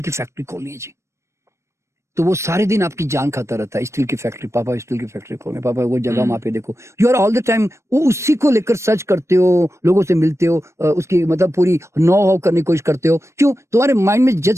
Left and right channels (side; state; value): left; late; 0.13 ms